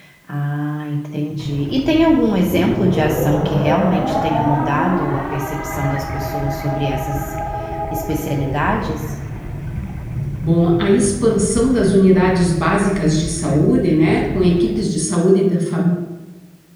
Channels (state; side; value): identical; both; correlation 1.00